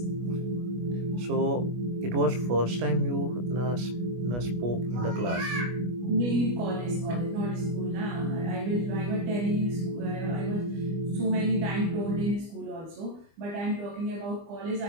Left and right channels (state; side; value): late; left; 25 ms